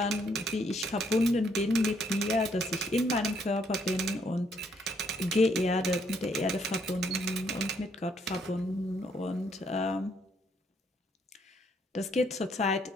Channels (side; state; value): both; normal; correlation 0.71